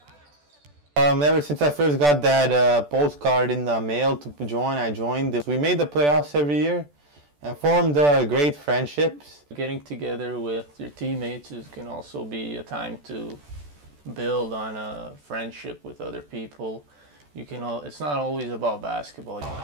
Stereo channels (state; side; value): late; left; 14 ms